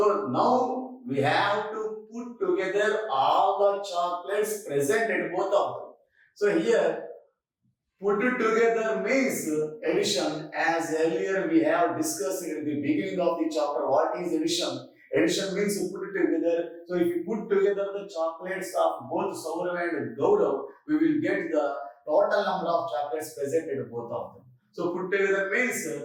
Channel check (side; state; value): both; identical; correlation 1.00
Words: now we have to put together all the chocolates present at both of them. So here, put it together means addition. As earlier we have discussed at the beginning of the chapter, what is addition? Addition means you put it together. So if you put together the chocolates of both Saurav and Gaurav, we will get the total number of chocolates present at both of them. So put together means